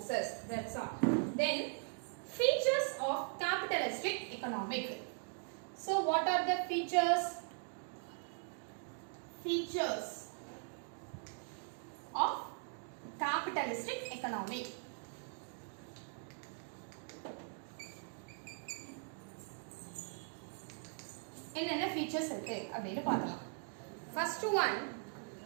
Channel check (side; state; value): left; silent; 51 dB below the other